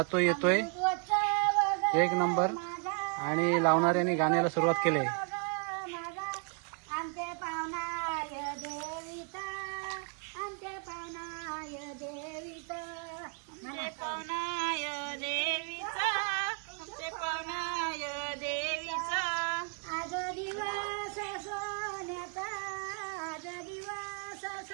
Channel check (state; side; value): quieter; left; 38.3 dB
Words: येतोय एक नंबर. आणि लावणाऱ्यांनी गाण्याला सुरुवात केली आहे.